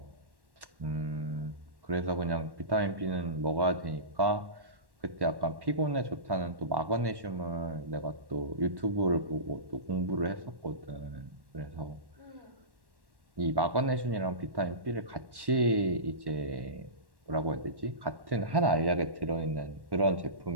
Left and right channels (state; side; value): late; left; 1.1 ms